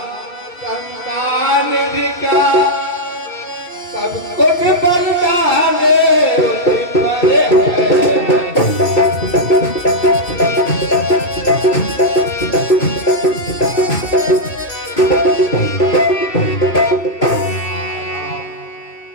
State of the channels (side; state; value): right; late; 2.6 ms